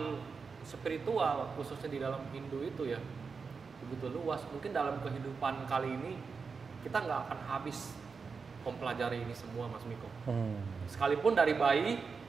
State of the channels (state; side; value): quieter; left; 5.1 dB